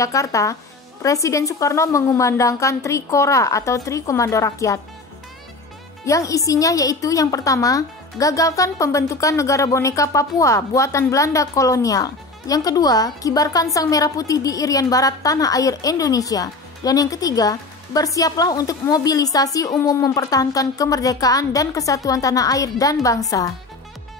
Presiden Soekarno mengumandangkan Tri Kora atau Tri Komando Rakyat. Yang isinya yaitu yang pertama, gagalkan pembentukan negara boneka Papua buatan Belanda kolonial. Yang kedua, kibarkan sang merah putih di Irian Barat tanah air Indonesia. Dan yang ketiga, bersiaplah untuk mobilisasi umum mempertahankan kemerdekaan dan kesatuan tanah air dan bangsa.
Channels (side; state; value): right; quieter; 3.3 dB